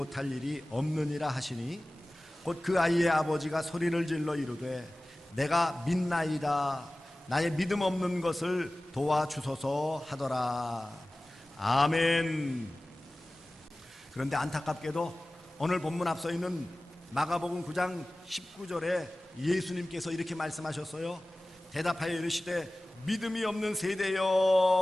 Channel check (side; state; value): both; normal; correlation 0.98